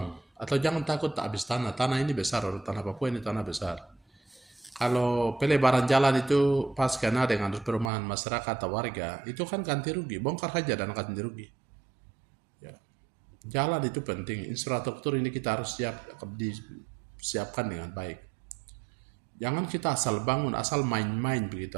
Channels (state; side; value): drops out; left; at 7.9 s